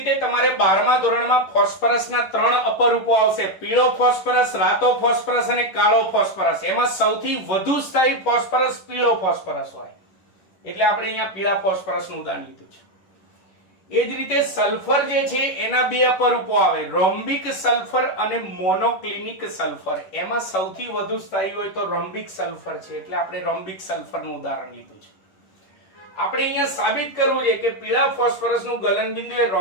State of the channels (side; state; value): right; late; 10 ms